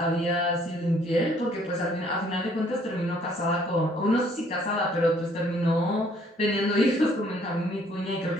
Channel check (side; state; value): both; normal; correlation 0.62